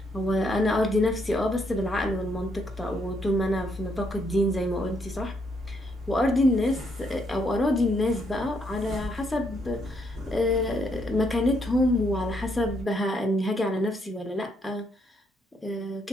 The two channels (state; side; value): normal; both; correlation 0.74